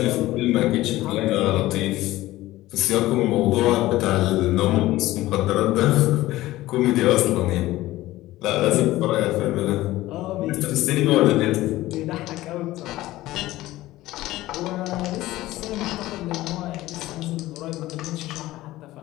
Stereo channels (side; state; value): right; quieter; 16.8 dB